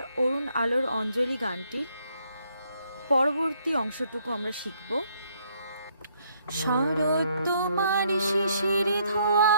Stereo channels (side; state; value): both; inverted; correlation -0.69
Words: অরুণ আলোর অঞ্জলি গানটির পরবর্তী অংশটুকু আমরা শিখব। শরৎ তোমার শিশির ধোয়া